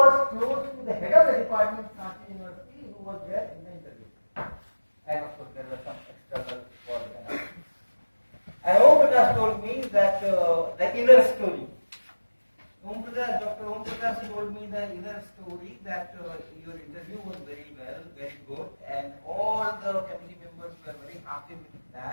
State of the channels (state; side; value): inverted; both; correlation -1.00